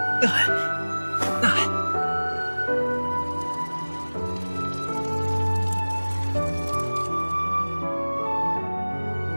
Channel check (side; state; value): both; inverted; correlation -1.00